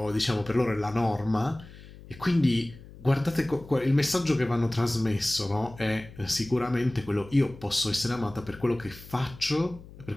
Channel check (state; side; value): noise; left; hum, 18 dB below the sound